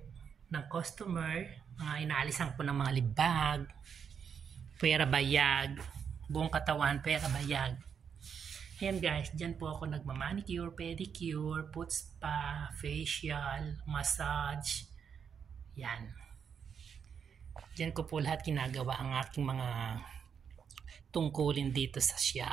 ng customer. Inaalisan po ng mga libag, pera bayag, buong katawan, pera bayag. Ayan guys, dyan po ako nagmamanicure, pedicure, foot spa, facial, massage. Yan. Dyan ko po lahat ginagawa ang aking mga tungkulin dito sa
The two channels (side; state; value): left; quieter; 7.1 dB